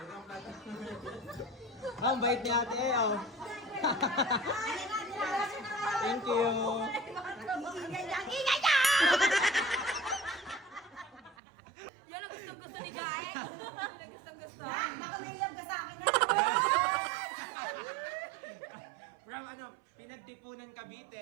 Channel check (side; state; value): left; drops out; at 11.4 s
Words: Ang bait ni ate oh. Thank you. Ingay ka! Yan ang gustong-gusto ni Gae. Yan ang gustong-gusto. Nakamilab ka sa akin na. From pinagtipunan